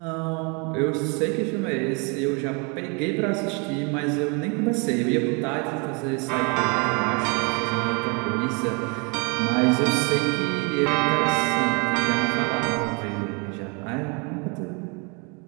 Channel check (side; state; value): left; quieter; 32.6 dB